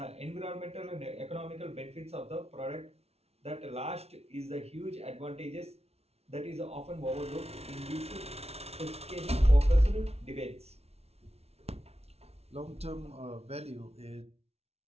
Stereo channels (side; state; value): left; late; 0.30 ms